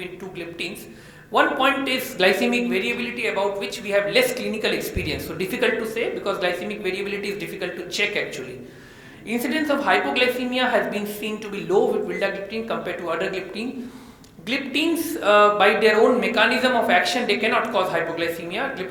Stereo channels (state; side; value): identical; both; correlation 1.00